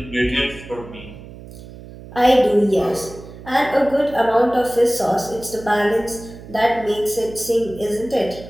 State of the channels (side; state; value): right; noise; hum, 16 dB below the sound